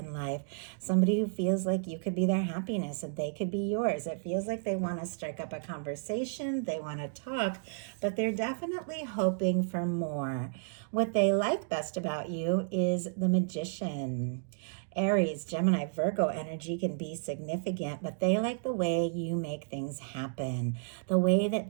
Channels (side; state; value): left; silent; digital silence